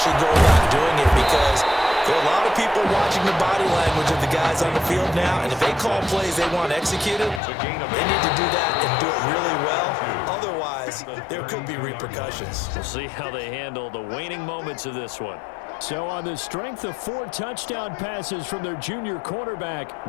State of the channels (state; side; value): drops out; right; at 7.4 s